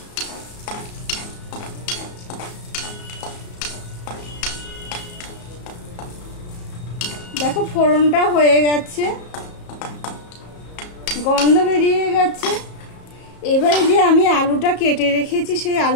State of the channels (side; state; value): right; late; 34 ms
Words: দেখো ফোড়নটা হয়ে গেছে, গন্ধ বেরিয়ে গেছে। এবারে যে আমি আলুটা কেটে রেখেছি সেই